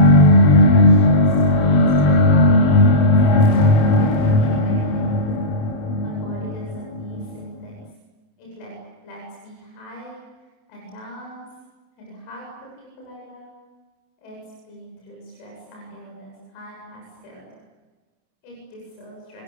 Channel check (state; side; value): late; right; 28 ms